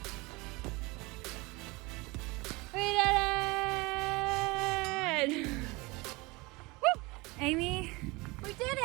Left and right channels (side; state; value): left; quieter; 24.2 dB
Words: We did it! Woo! Amy We did